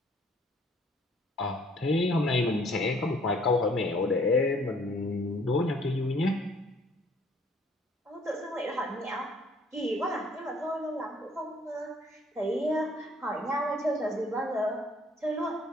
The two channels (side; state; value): both; normal; correlation 0.60